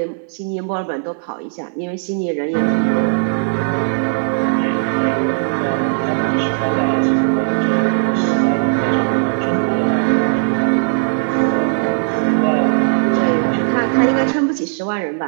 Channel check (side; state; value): left; silent; digital silence